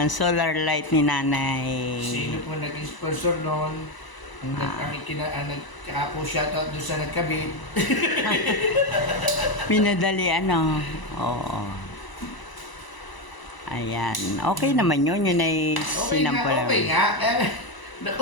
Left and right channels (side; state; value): right; late; 1.0 ms